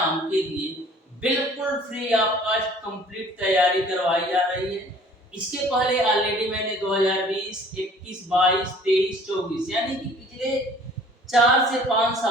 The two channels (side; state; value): both; normal; correlation 0.52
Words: के लिए बिल्कुल फ्री ऑफ कॉस्ट कंप्लीट तैयारी करवाई जा रही है। इसके पहले ऑलरेडी मैंने 2020, 21, 22, 23, 24 यानी कि पिछले 4 से 5